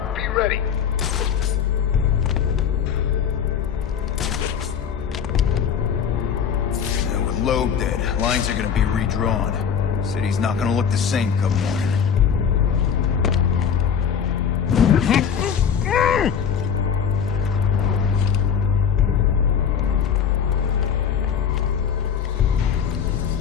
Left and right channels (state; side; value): quieter; right; 7.6 dB